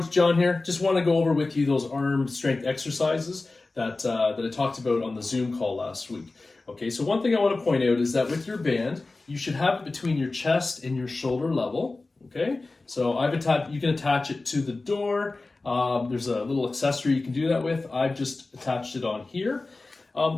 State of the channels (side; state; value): right; quieter; 3.4 dB